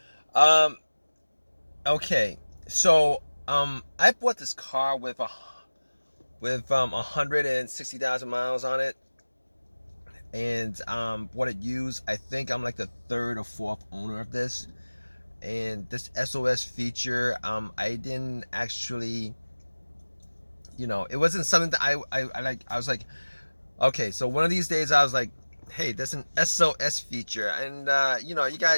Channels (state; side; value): inverted; both; correlation -1.00